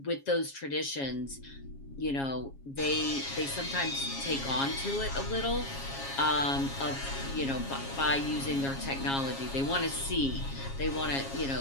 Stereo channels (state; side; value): late; right; 7.3 ms